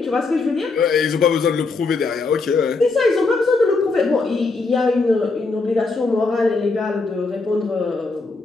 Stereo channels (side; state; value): right; quieter; 3.9 dB